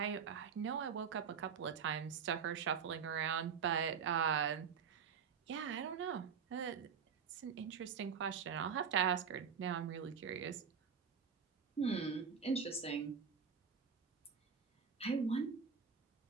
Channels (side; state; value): left; quieter; 6.7 dB